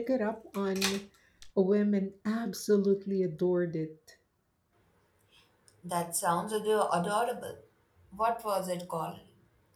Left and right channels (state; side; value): identical; both; correlation 1.00